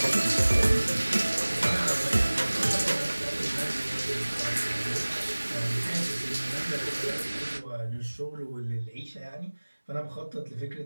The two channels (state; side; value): inverted; both; correlation -1.00